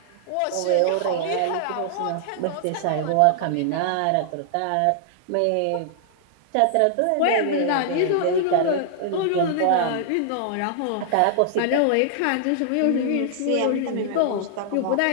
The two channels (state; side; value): different; both; correlation -0.01